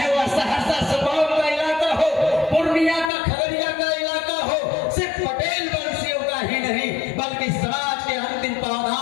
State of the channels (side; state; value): right; drops out; at 3.1 s